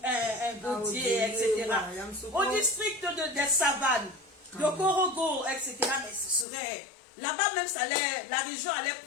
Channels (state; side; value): drops out; right; at 6.5 s